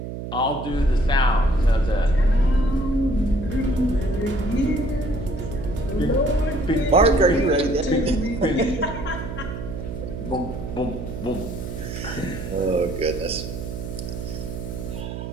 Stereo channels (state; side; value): noise; right; hum, 7 dB below the sound